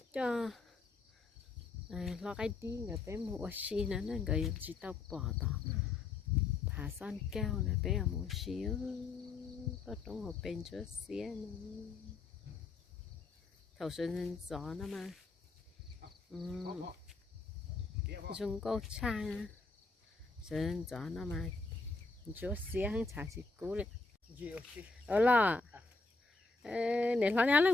cho lo cái đi người bé mua xí nó người chỉ tao bỏ tao thả son keo này bé ở mua xíu có trong hộp bên chỗ xía nó thầu sơn gió nó mà dùng câu chai sơn gió nó mà chỗ xía hắn chả chỉ cú đấy ở là để lo nhá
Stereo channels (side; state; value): right; quieter; 4.0 dB